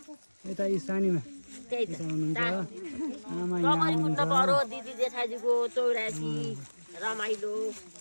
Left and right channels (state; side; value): inverted; both; correlation -1.00